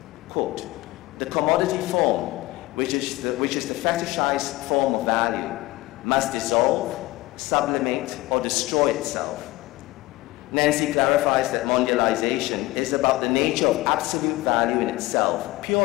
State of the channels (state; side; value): quieter; right; 19.4 dB